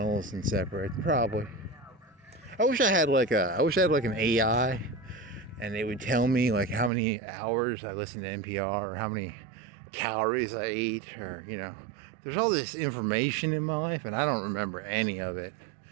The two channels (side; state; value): left; drops out; at 6.9 s